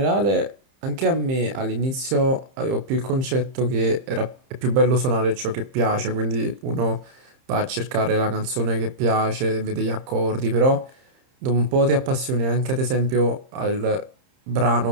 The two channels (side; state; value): left; late; 30 ms